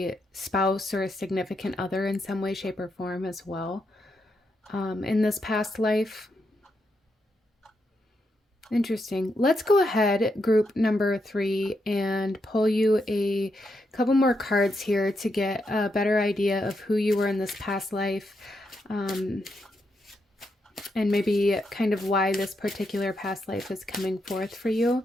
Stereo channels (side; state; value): both; normal; correlation 0.82